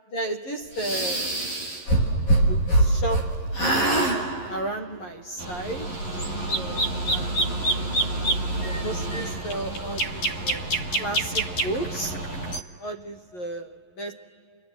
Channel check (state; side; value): late; right; 11 ms